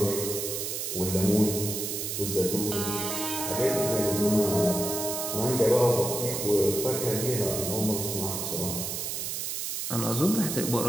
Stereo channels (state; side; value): noise; right; hiss, 3 dB below the sound